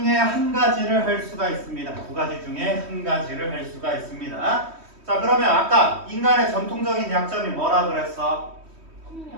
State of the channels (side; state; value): left; late; 3.1 ms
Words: 한 가지를 할 수가 있습니다. 두 가지 중에 한 가지를 할 수가 있습니다. 자, 그러면 아까 인간의 전통적인 약점이 뭐라 그랬어?